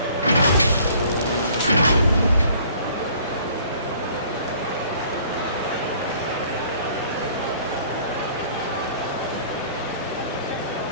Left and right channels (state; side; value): inverted; both; correlation -0.54